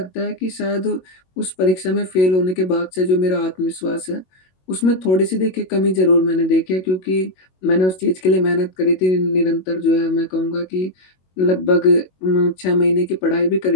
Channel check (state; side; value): late; right; 22 ms